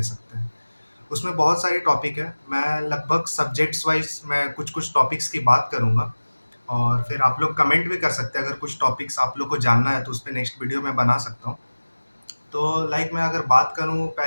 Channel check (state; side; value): inverted; both; correlation -1.00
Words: सकते हैं। उसमें बहुत सारी टॉपिक है, मैं लगभग सब्जेक्ट्स वाइज मैं कुछ कुछ टॉपिक्स की बात करूँगा और फिर आप लोग कमेंट भी कर सकते हैं। अगर कुछ टॉपिक्स आप लोग को जानना है तो उस पे नेक्स्ट वीडियो मैं बना सकता हूँ। तो मैं अगर बात करूँ,